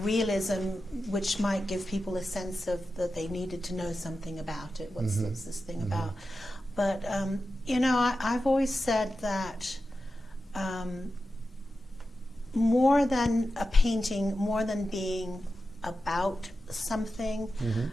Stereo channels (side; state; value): both; normal; correlation 0.91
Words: realism, which might give people a sense of that they needed to know something about it. What's this thing about? But I've always said that more than a painting, more than being about something,